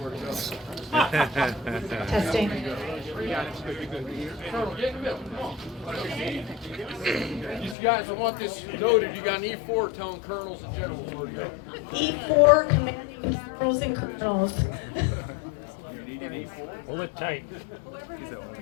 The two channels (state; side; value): drops out; right; at 7.8 s